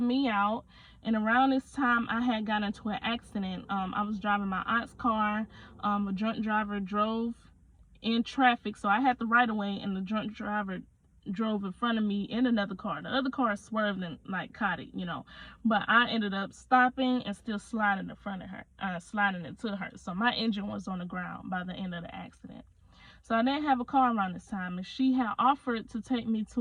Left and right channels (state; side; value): identical; both; correlation 1.00